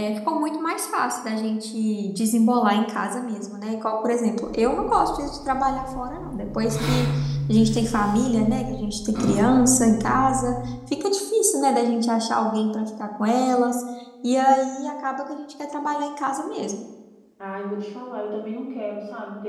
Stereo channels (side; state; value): both; identical; correlation 1.00